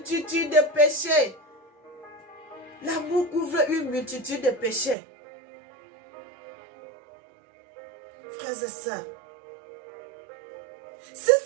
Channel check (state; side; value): drops out; left; at 5.0 s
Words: de péchés. L'amour couvre une multitude de péchés. Frères et sœurs, si